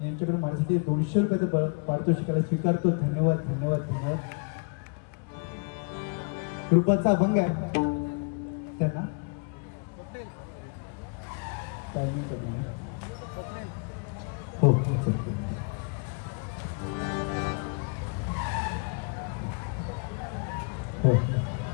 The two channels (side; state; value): right; quieter; 34.9 dB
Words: यांच्याकडे माझ्यासाठी 200 रुपयाचं पारितोषिकाला स्वीकारतो. धन्यवाद धन्यवाद धन्यवाद. कृपाचा अभंग आहे त्यांना टायमिंग कमी आहे. हो हो.